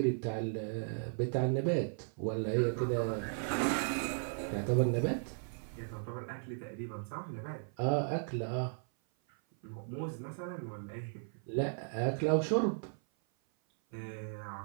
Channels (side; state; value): left; silent; 54 dB below the other